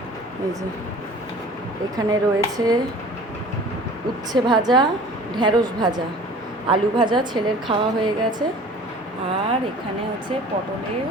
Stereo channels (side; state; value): both; normal; correlation 0.45